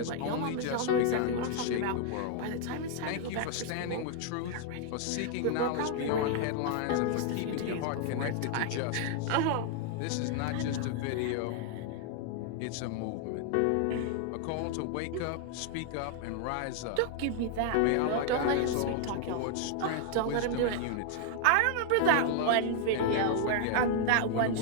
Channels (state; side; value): different; both; correlation 0.00